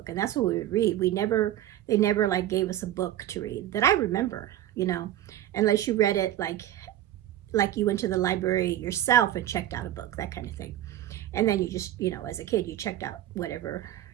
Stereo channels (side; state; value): left; quieter; 12.8 dB